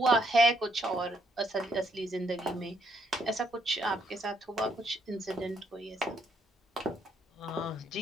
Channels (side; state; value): both; normal; correlation 0.72